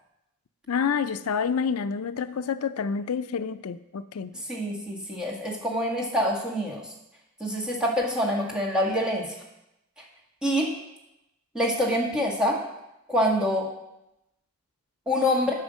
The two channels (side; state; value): both; normal; correlation 0.32